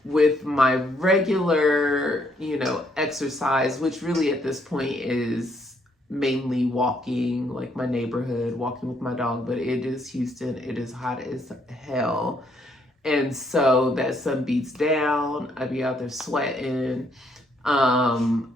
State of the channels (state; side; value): normal; both; correlation 0.70